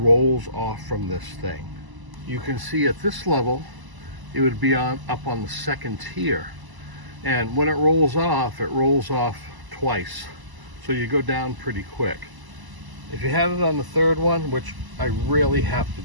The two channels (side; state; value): left; late; 1.0 ms